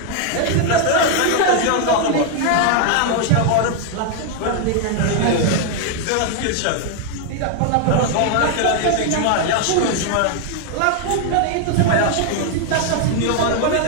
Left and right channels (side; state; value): both; different; correlation 0.00